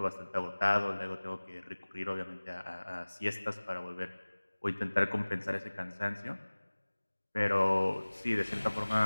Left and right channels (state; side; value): inverted; both; correlation -1.00